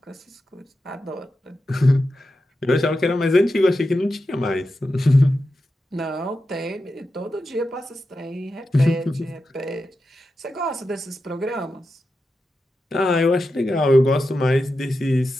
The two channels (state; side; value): normal; both; correlation 0.90